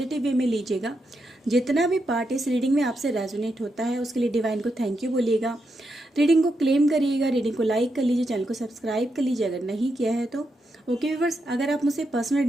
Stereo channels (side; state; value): both; normal; correlation 0.83